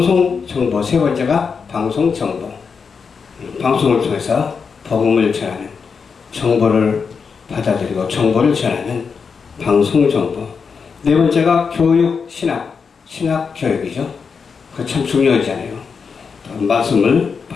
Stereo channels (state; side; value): quieter; right; 5.7 dB